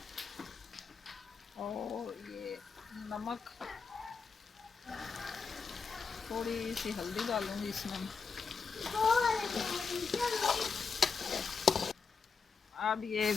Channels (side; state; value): right; quieter; 5.2 dB